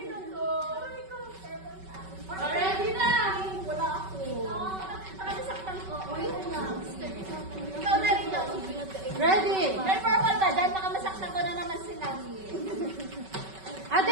Ready na! Wala ako. Nakasaktan ko. Ikaw na rin daw. Ready? May purple ba? Dahil baka masaktan ko na naman sila. Ate,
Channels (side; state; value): left; late; 5.3 ms